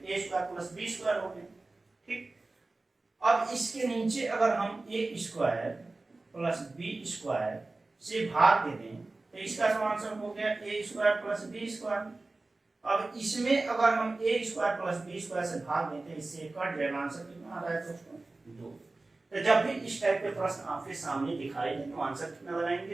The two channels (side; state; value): left; quieter; 3.2 dB